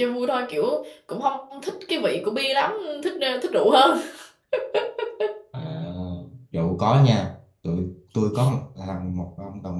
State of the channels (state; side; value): identical; both; correlation 1.00